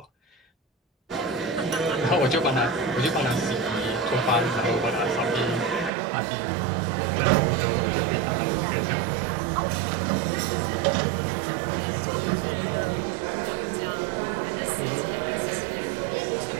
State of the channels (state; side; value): drops out; left; at 5.9 s